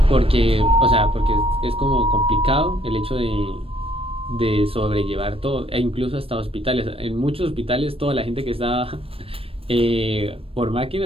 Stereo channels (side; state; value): left; late; 0.28 ms